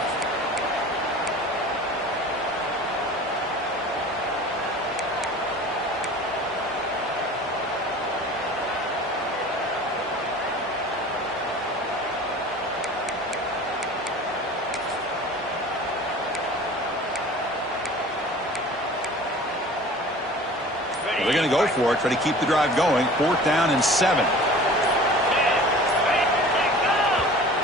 They're going to go for it, try to keep the drive going. 4th down and 7.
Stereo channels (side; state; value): both; normal; correlation 0.42